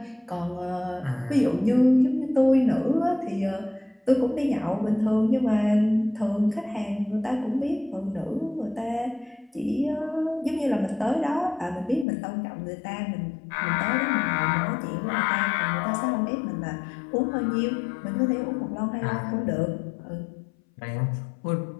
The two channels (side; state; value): right; drops out; at 12.1 s